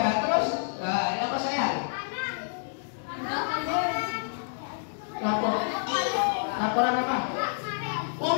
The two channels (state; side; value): silent; right; digital silence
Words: Terus, nah, apa sayang? Laporan apa? Oh,